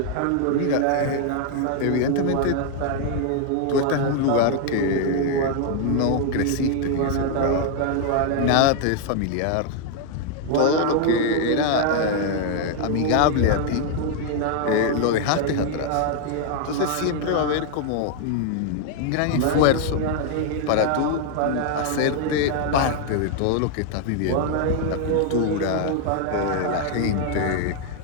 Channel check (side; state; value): both; different; correlation 0.00